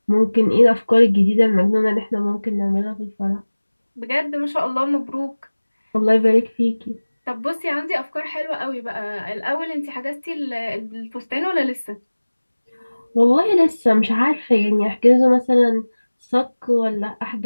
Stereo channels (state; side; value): inverted; both; correlation -1.00